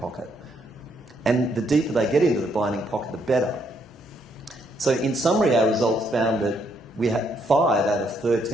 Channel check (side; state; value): both; normal; correlation 0.73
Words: And the deeper they get into the binding pocket, the better. So in summary, our results found that we had 5 out of